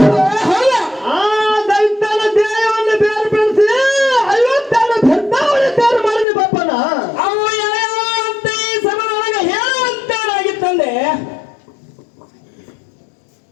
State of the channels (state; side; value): drops out; right; at 6.2 s